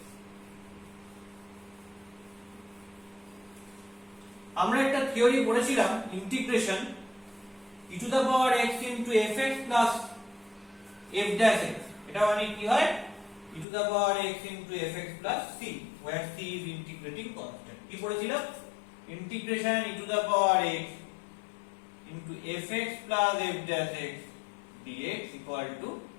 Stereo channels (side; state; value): right; drops out; at 13.7 s